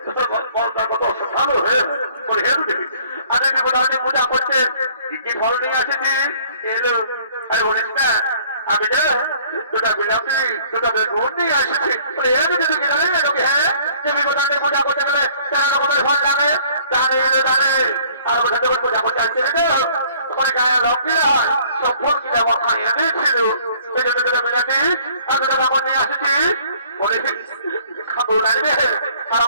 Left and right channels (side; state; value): both; inverted; correlation -0.56